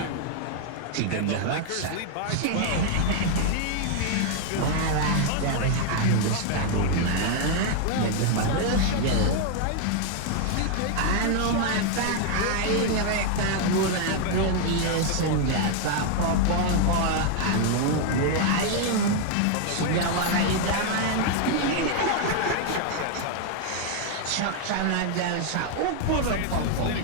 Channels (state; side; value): different; both; correlation 0.00